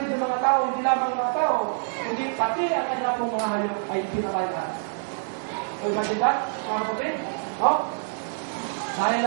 ng mga tao, hindi lamang mga tao, kundi pati ang kanya pong mga hayop ay pinatay na. So, natin ba, mga kapatid? No? Dahil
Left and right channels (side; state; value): left; silent; 61 dB below the other